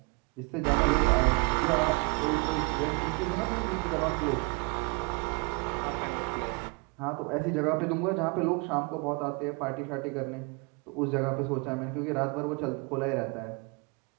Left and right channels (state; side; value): quieter; left; 31.6 dB